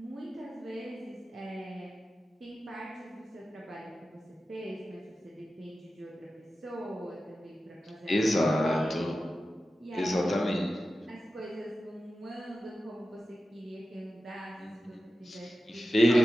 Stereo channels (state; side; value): normal; both; correlation 0.93